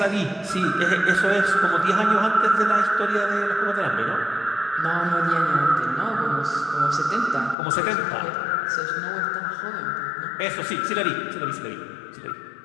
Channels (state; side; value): drops out; right; at 7.6 s